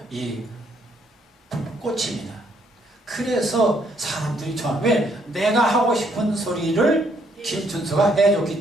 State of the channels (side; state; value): both; normal; correlation 0.70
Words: 이 꽃입니다. 그래서 사람들이 좋아하는, 왜? 내가 하고 싶은 소리를 김춘수가 해줬기